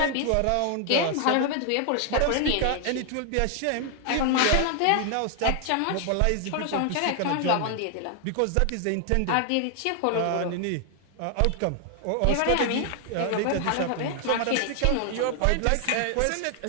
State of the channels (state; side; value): different; both; correlation 0.00